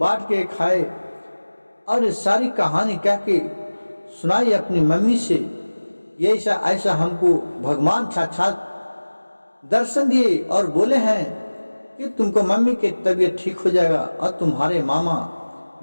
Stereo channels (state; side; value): inverted; both; correlation -1.00